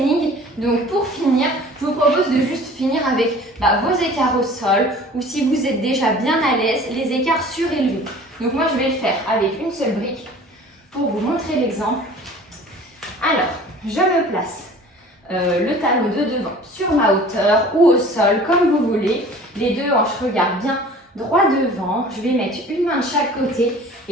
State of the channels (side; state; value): both; normal; correlation 0.46